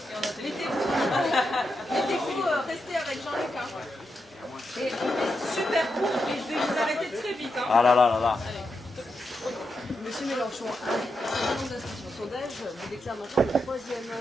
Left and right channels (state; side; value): normal; both; correlation 0.86